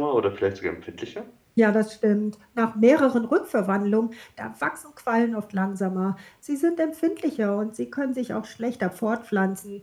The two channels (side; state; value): both; identical; correlation 1.00